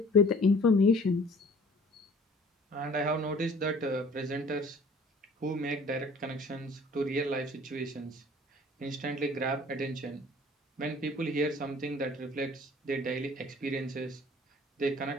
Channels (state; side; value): normal; both; correlation 0.51